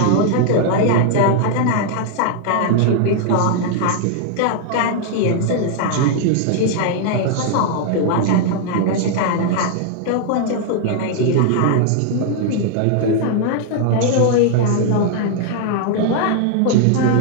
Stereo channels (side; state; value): both; different; correlation 0.00